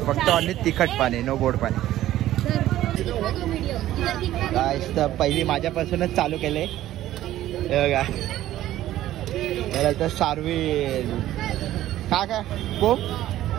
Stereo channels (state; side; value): quieter; left; 13.9 dB